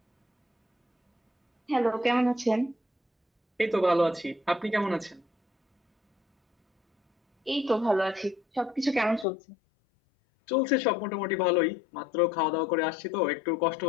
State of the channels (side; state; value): right; drops out; at 9.2 s